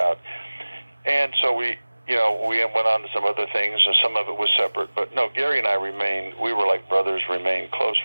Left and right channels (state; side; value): inverted; both; correlation -1.00